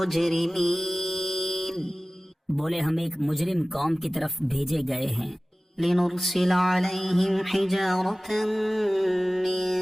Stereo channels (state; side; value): normal; both; correlation 0.97